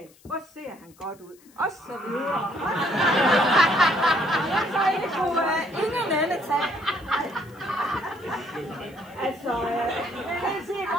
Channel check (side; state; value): left; noise; hiss, 28 dB below the sound